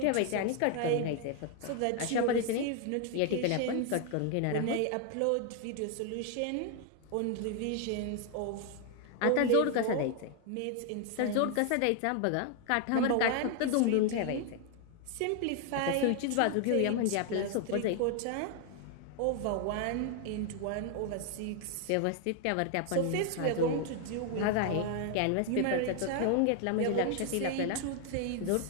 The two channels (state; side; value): different; both; correlation 0.00